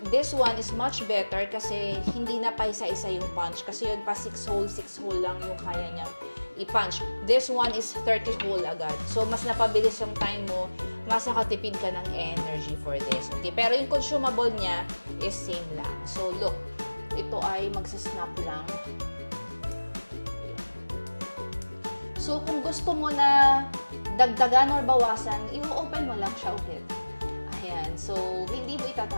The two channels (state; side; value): inverted; both; correlation -1.00